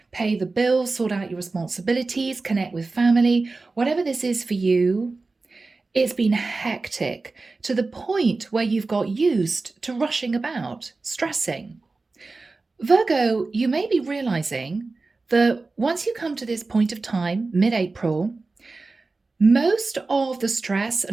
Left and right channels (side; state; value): left; quieter; 3.7 dB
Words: pay the bills, sort out your responsibilities, connect with family. Whatever this is for you, it's been hectic to the point where you've got used to rushing about, stressing. Virgo, you may be realizing that once you come to this point of time, mid-April, most of the stress